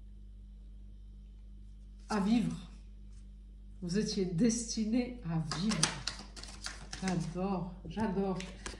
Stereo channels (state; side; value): identical; both; correlation 1.00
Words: Vous étiez destiné à vivre. J'adore, j'adore.